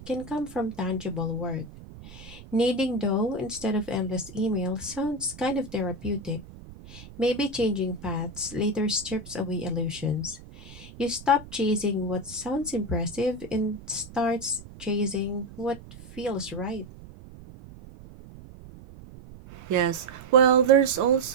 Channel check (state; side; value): noise; right; rumble, 17 dB below the sound